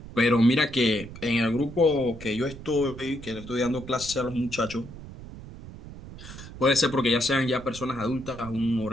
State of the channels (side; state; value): right; noise; rumble, 14 dB below the sound